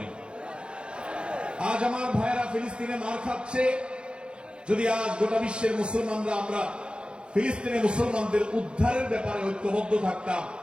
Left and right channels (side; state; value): left; late; 0.054 ms